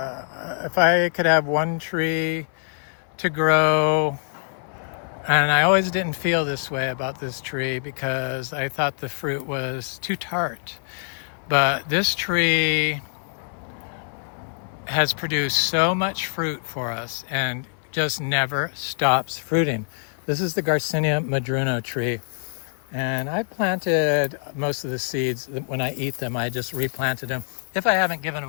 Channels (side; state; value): right; silent; digital silence